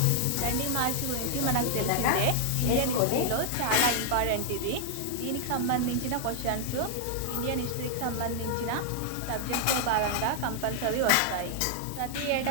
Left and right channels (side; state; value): both; different; correlation -0.01